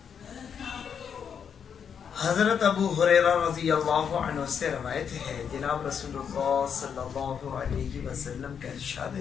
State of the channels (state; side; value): quieter; right; 7.4 dB